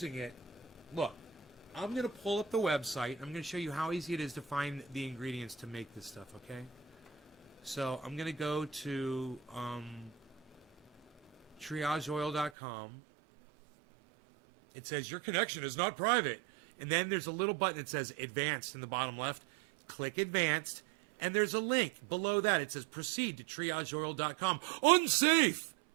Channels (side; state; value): left; drops out; at 12.5 s